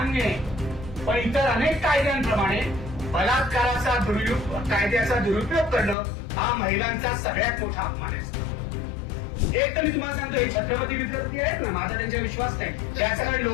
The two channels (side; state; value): right; drops out; at 6.0 s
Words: आहे. पण इतर अनेक कायद्यांप्रमाणे बलात्काराचा कायद्याचा दुरुपयोग करणं हा महिलांचा सगळ्यात मोठा अपमान आहे. एक तर मी तुम्हाला सांगतो, हे छत्रपती विद्यार्थी आहेत ना, माझा त्यांचा विश्वास नाही. त्या सगळ्या